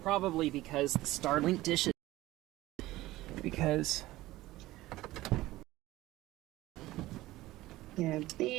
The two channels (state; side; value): quieter; left; 17.2 dB